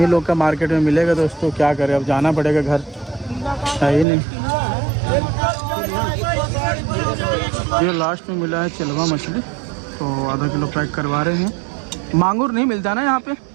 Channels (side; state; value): left; drops out; at 4.0 s